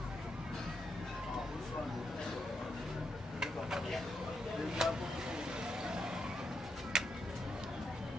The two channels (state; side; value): normal; both; correlation 0.82